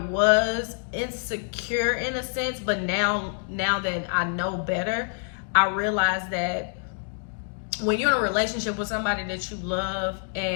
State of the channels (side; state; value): right; silent; 61 dB below the other